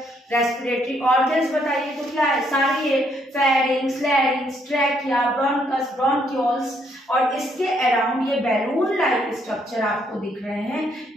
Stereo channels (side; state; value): both; normal; correlation 0.71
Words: रेस्पिरेटरी ऑर्गन्स बताइए तो क्या है, सारी है, फेरिंग्स, लैरिंग्स, ट्रैकिया, ब्रोंकस, ब्रोंक्यूल्स, और इसके अराउंड ये बैलून लाइक स्ट्रक्चर आपको दिख रहे हैं,